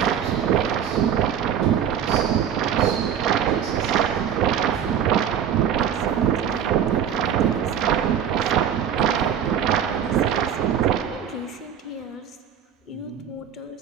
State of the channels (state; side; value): quieter; left; 8.7 dB